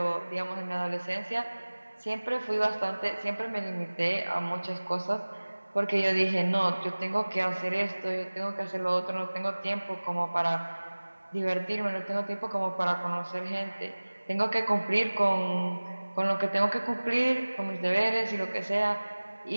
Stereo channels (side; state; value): both; inverted; correlation -1.00